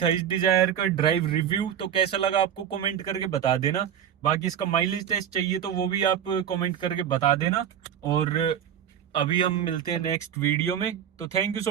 इस डिजायर का ड्राइव रिव्यू। तो कैसा लगा आपको कमेंट करके बता देना। बाकी इसका माइलेज टेस्ट चाहिए तो वो भी आप कमेंट करके बता देना। और अभी हम मिलते हैं नेक्स्ट वीडियो में। तो थैंक यू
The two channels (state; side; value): quieter; left; 9.2 dB